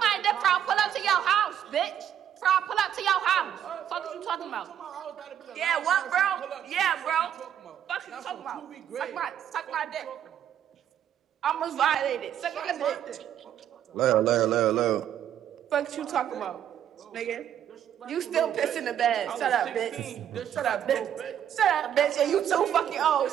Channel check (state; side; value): quieter; left; 9.9 dB